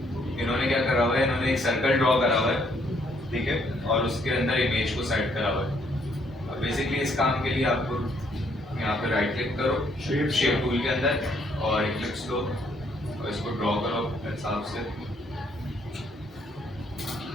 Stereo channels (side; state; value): both; normal; correlation 0.68